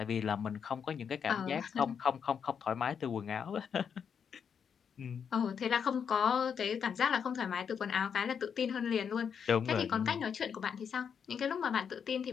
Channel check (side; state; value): right; quieter; 7.1 dB